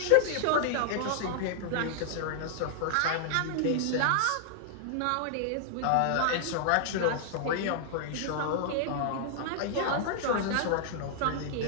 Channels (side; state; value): both; different; correlation -0.01